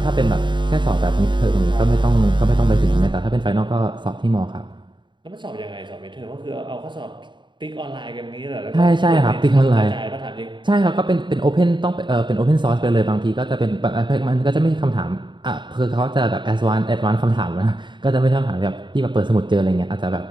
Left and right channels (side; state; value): left; late; 0.23 ms